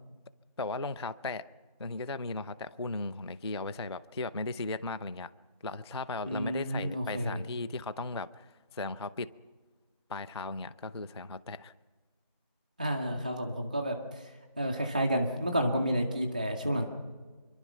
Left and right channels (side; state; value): both; inverted; correlation -0.65